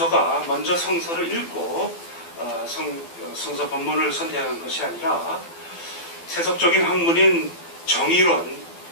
먼저 성서를 읽고 성서 본문을 선택한 것이 아니라 세속적인 학문인 정의론,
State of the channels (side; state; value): right; late; 12 ms